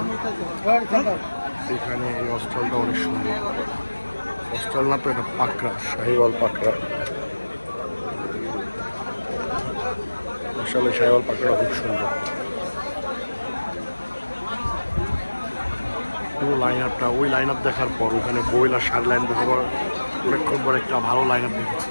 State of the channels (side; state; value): both; inverted; correlation -1.00